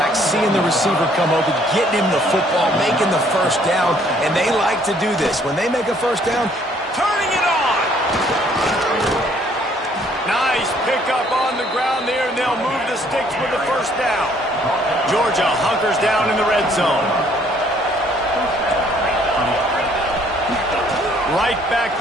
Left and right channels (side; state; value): both; normal; correlation 0.63